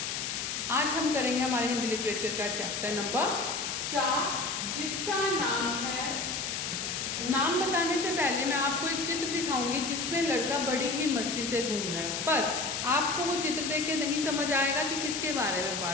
आज हम करेंगे हमारे हिंदी लिटरेचर का चैप्टर नंबर 4 जिसका नाम है। नाम बताने से पहले मैं आपको एक चित्र दिखाऊंगी जिसमें लड़का बड़ी ही मस्ती से घूम रहा है, पर आपको वो चित्र देख के नहीं समझ आएगा कि किसके बारे में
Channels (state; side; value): noise; left; hiss, 3 dB below the sound